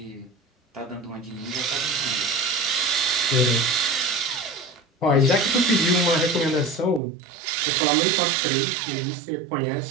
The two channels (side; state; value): left; drops out; at 7.0 s